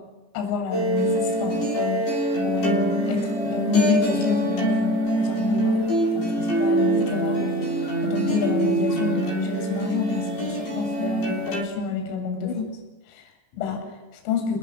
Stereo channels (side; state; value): right; late; 15 ms